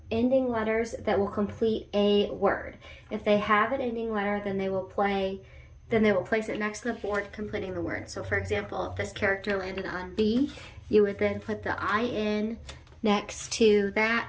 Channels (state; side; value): identical; both; correlation 1.00